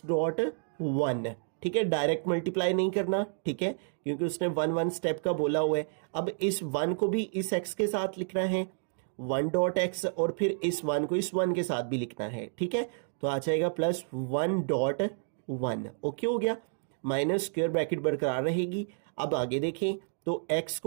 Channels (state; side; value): silent; left; digital silence